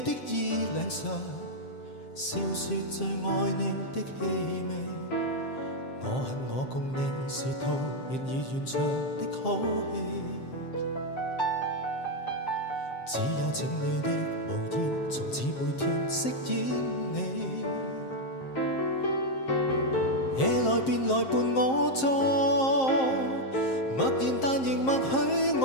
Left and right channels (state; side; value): late; right; 7.6 ms